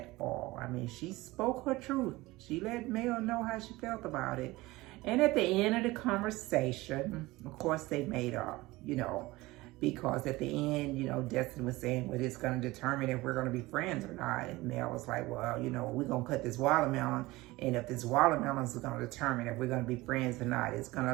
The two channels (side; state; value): left; quieter; 20.1 dB